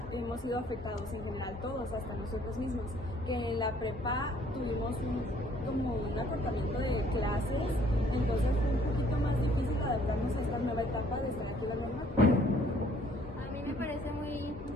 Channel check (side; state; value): both; normal; correlation 0.60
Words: hemos sido afectados en general todos, hasta nosotros mismos, que en la prepa tuvimos como un acortamiento de clases, entonces fue un poquito más difícil adaptarnos a esta nueva etapa de estar aquí en la norma. A mí me parece muy